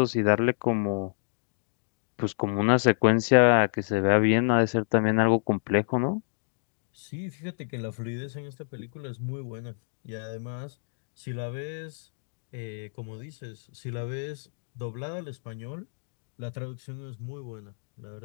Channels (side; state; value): right; silent; digital silence